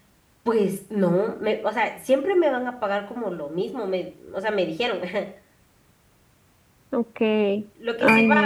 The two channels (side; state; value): both; identical; correlation 1.00